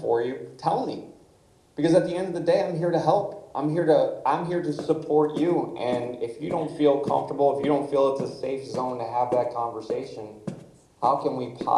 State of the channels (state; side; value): identical; both; correlation 1.00